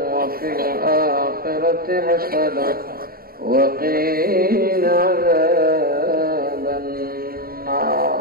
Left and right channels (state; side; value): late; left; 0.43 ms